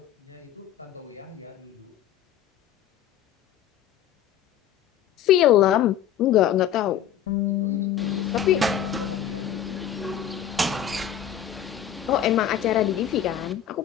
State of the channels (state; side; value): quieter; right; 9.8 dB